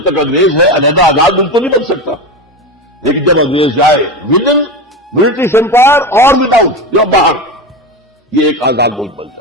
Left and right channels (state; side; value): normal; both; correlation 0.21